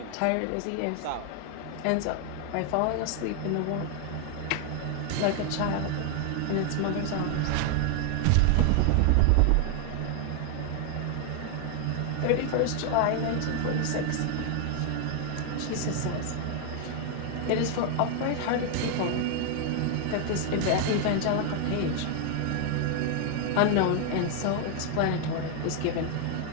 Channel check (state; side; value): different; both; correlation 0.00